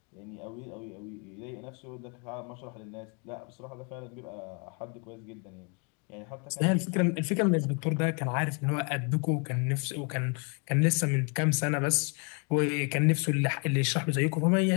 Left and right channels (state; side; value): quieter; right; 34.6 dB